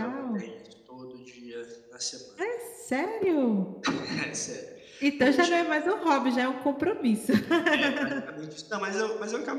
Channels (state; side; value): identical; both; correlation 1.00